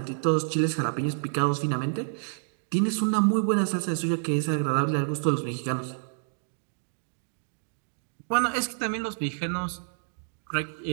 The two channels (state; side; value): silent; left; digital silence